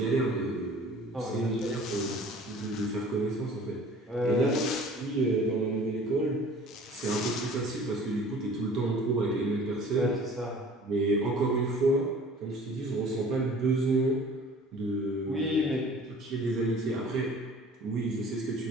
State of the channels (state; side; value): normal; both; correlation 0.47